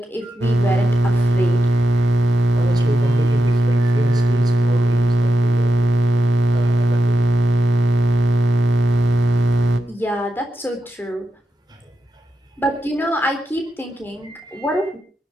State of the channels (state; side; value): normal; both; correlation 0.87